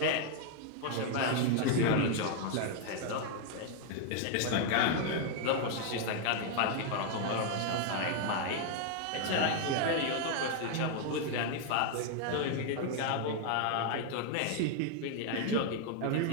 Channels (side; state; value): both; different; correlation 0.00